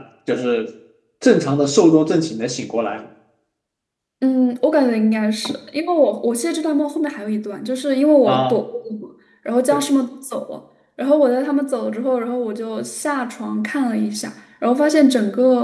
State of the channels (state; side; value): identical; both; correlation 1.00